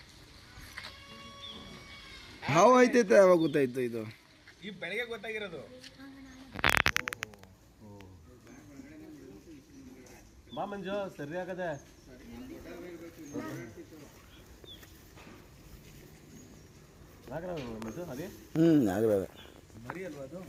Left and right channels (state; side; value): identical; both; correlation 1.00